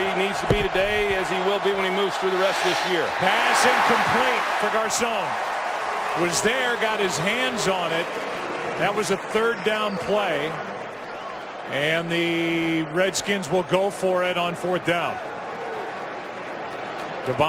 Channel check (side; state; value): both; identical; correlation 1.00